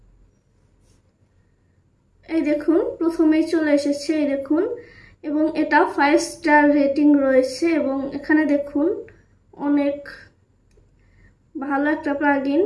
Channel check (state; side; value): identical; both; correlation 1.00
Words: এই দেখুন প্রথমেই চলে এসেছে, এই দেখুন, এবং এটা 5 স্টার রেটিং রয়েছে এবং এখানে দেখুন অনেক ভালো একটা প্লাগইন,